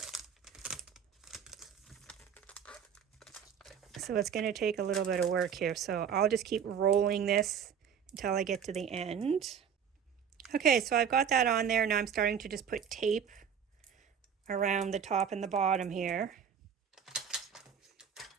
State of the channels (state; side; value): quieter; left; 7.8 dB